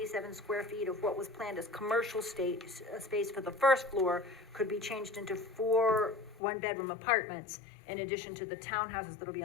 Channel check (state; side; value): drops out; right; at 6.4 s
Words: square feet of what was planned as commercial space for the first floor could be changed into 4 one-bedroom apartments in addition to the townhouses that'll be